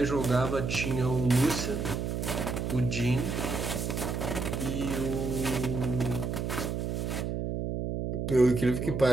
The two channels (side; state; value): right; noise; hum, 2 dB below the sound